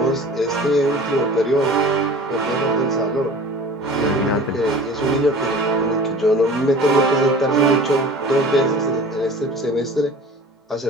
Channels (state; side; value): normal; both; correlation 0.42